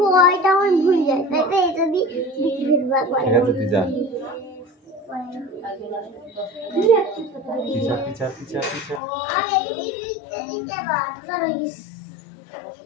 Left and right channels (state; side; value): drops out; right; at 9.0 s